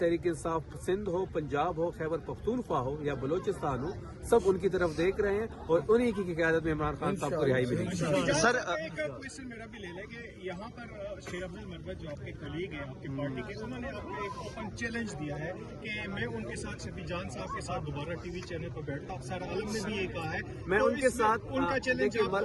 इंसाफ सिंध हो, पंजाब हो, खैबर पख्तूनख्वा हो या बलोचिस्तान हो, सब उनकी तरफ देख रहे हैं और उन्हीं की क़यादत में इमरान खान साहब को रिहाई मिलेगी। सर, एक क्वेश्चन मेरा भी ले लें कि यहाँ पर शेर अब्दुल मरवत जो आपके कलीग हैं आपकी पार्टी के, उन्होंने आपको एक ओपन चैलेंज दिया है कि मैं उनके साथ शफी जान साहब के साथ दोबारा टीवी चैनल पर बैठता। अफसर आलम ने भी ये कहा है मैं तो उनके साथ उनका चैलेंज।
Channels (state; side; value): identical; both; correlation 1.00